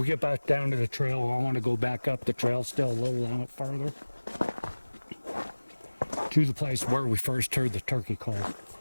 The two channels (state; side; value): inverted; both; correlation -1.00